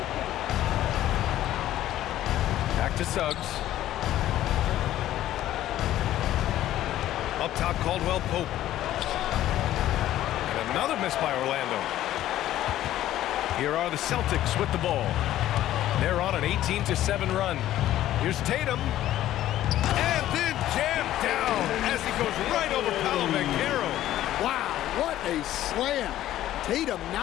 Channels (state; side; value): quieter; right; 13.4 dB